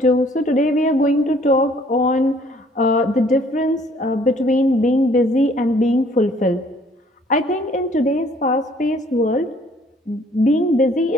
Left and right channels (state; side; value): normal; both; correlation 0.59